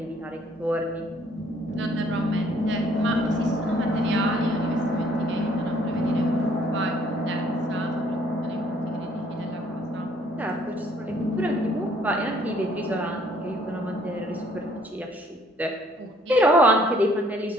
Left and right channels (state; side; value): normal; both; correlation 0.62